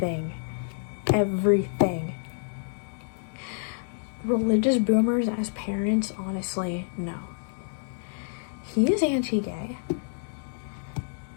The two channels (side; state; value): right; silent; digital silence